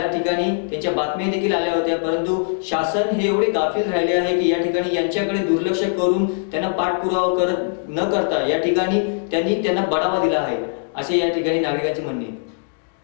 ठिकाणी त्यांच्या बातम्या देखील आल्या होत्या, परंतु शासन हे एवढे गाफील राहिले आहे की या ठिकाणी यांच्याकडे दुर्लक्ष करून त्यांना पाठपुरावा न करता या ठिकाणी त्यांना बढावा दिला आहे, असे या ठिकाणी नागरिकांचे म्हणणे आहे।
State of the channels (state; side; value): silent; right; digital silence